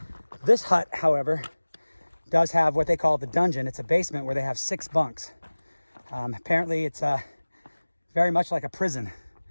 This hut, however, does have what they call the dungeon. It's a basement where they have 6 bunks. Apparently, it's very much like a prison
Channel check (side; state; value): both; inverted; correlation -1.00